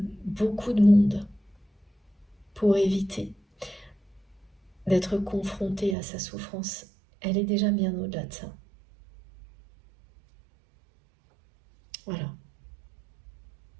beaucoup de monde pour éviter d'être confrontée à sa souffrance. Elle est déjà bien au-delà de ça. Voilà.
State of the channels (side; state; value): left; drops out; at 6.0 s